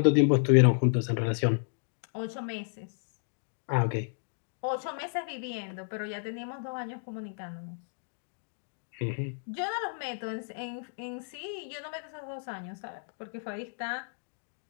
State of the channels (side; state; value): right; silent; digital silence